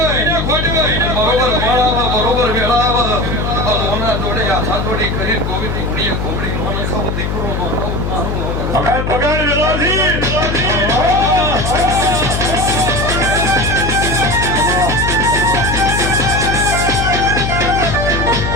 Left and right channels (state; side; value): noise; left; hum, 2 dB below the sound